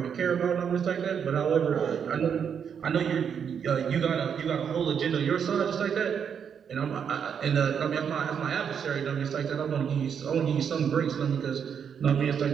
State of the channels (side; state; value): left; quieter; 7.5 dB